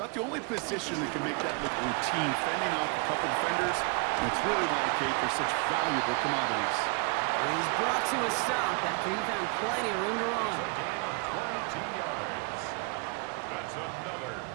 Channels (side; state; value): left; quieter; 33.1 dB